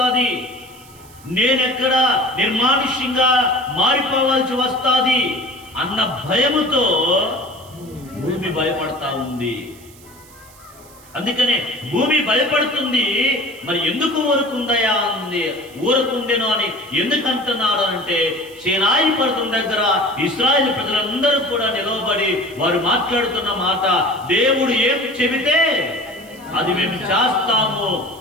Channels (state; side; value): noise; right; hiss, 24 dB below the sound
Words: నేనెక్కడ నిర్మానుష్యంగా మారిపోవాల్సి వస్తుంది అన్న భయముతో భూమి భయపడతా ఉంది. అందుకనే భూమి భయపడుతుంది. మరి ఎందుకు ఊరుకుందయా అంది, ఊరుకుండెను అని ఎందుకు అంటున్నాడు అంటే, సీనాయి పర్వతం దగ్గర ఇశ్రాయేలు ప్రజలందరూ కూడా నిలవబడి వారు మాట్లాడుతున్న మాట, దేవుడు ఏం చెబితే అది మేము చేస్తాము,